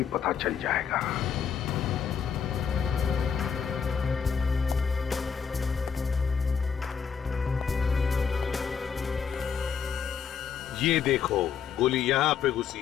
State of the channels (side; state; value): right; quieter; 7.0 dB